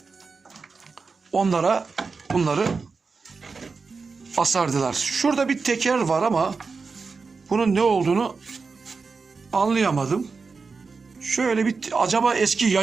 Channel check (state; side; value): quieter; left; 4.6 dB